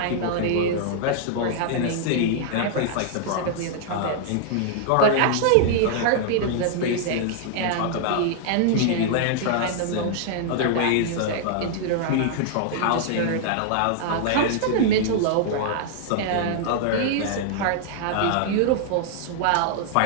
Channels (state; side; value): different; both; correlation -0.01